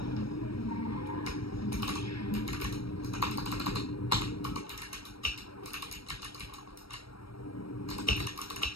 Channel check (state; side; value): late; right; 0.75 ms